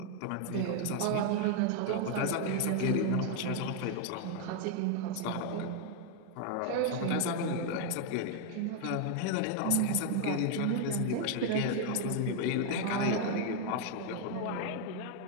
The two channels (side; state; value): both; different; correlation 0.00